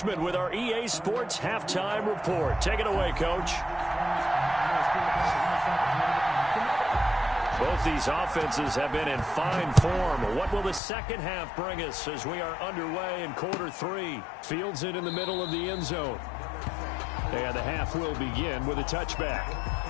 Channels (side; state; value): right; drops out; at 10.8 s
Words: with our EA Sports Halftime Report. Take it away, Coach. Both these offenses have been in fine form. What will the second half bring us as we are underway in quarter 3? Fields it in the middle of the end zone. And the half will begin with a touchback.